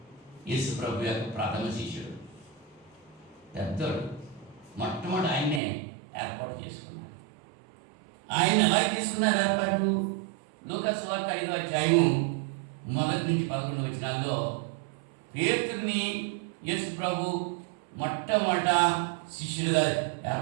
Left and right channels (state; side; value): drops out; left; at 5.6 s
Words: యేసు ప్రభు యొక్క ప్రథమ శిష్యుడు, పెద్దోడు. మొట్టమొదటి ఆయన్నే ఏర్పాటు చేసుకున్నారు. ఆయన ఎలా తీసుకున్నారు ఏర్పాటు? లూకాసు వార్త 5వ అధ్యాయము 1 నుంచి 11 వచనాల్లో పేతురుని యేసు ప్రభు మొట్టమొదట శిష్యులుగా